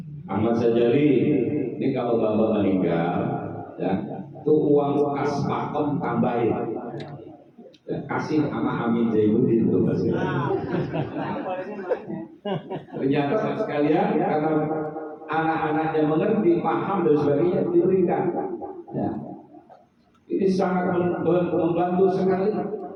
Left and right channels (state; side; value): identical; both; correlation 1.00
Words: Ahmad Sajali, ini kalau bapak meninggal, ya, tuh uang kas makom tambahin. Ya, kasih sama Amin Zainuddin itu masih. Ternyata sekalian karena anak-anaknya mengerti, paham dan sebagainya diberikan. Ya. Ini sangat membantu sekali.